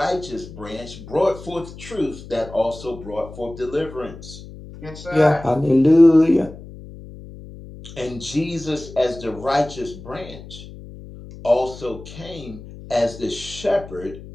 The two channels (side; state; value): left; noise; hum, 15 dB below the sound